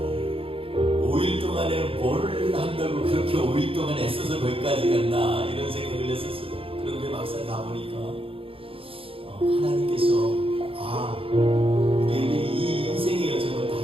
만에 뭘 한다고 그렇게 5일 동안 애써서 거기까지 갔나 이런 생각을 했었어요. 그런데 막상 가보니까 하나님께서 우리에게 이 인생의 여정을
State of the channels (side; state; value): left; late; 0.27 ms